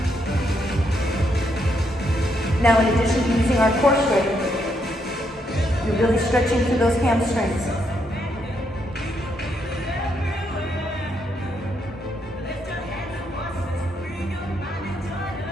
Now, in addition to using our core strength, you're really stretching through those hamstrings.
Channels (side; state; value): both; normal; correlation 0.77